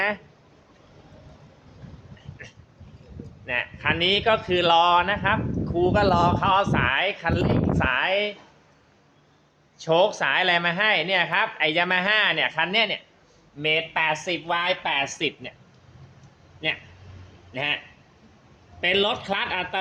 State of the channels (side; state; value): both; identical; correlation 1.00